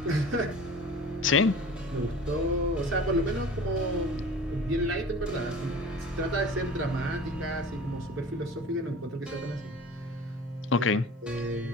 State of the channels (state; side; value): normal; both; correlation 0.40